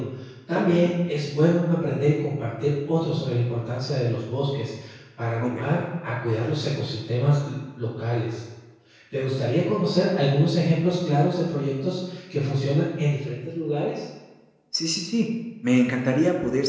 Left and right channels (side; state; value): both; identical; correlation 1.00